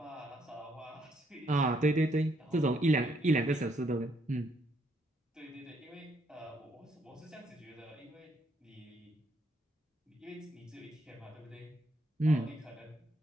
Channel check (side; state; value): both; normal; correlation 0.72